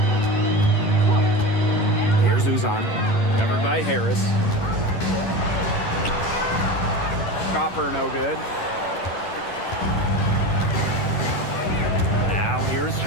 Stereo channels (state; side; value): late; right; 10 ms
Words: Here's Uzan. Covered by Harris. Copper no good. Now here's